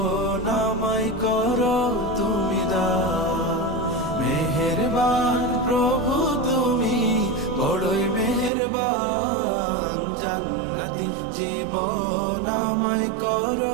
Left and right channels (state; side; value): drops out; left; at 8.5 s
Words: আমায় করো তুমি দান। মেহেরবান প্রভু তুমি বড়ই মেহেরবান, জান্নাতি জীবন আমায়